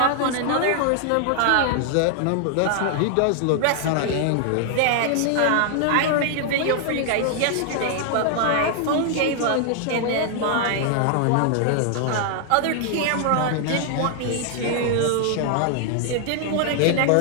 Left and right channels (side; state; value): both; different; correlation 0.00